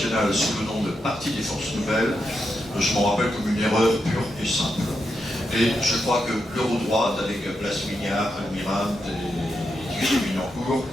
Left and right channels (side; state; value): both; normal; correlation 0.85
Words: sous le nom de Parti des Forces Nouvelles. Je m'en rappelle comme une erreur pure et simple. Et je crois que l'Eurodroite, avec Blas Mignard, Almirante et Thierry Minancourt,